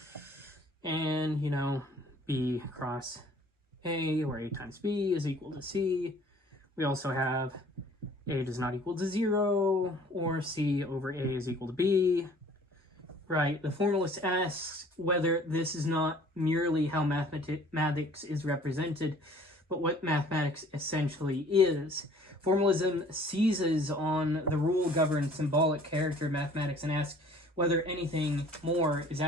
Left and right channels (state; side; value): normal; both; correlation 0.53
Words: and, B cross A, or A times B is equal to C. We also have A does not equal to 0, or C over A is equal to B. Right, the formalist asks whether this is not merely how mathematics is represented, but what mathematics essentially is. Formalism seizes on the rule-governed symbolic character of mathematics and asks whether anything more is